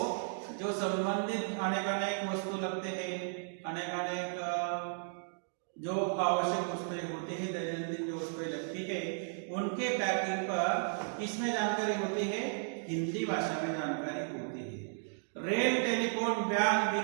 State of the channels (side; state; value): left; silent; digital silence